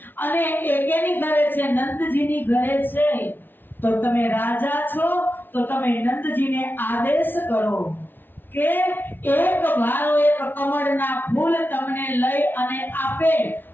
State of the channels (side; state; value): right; late; 0.096 ms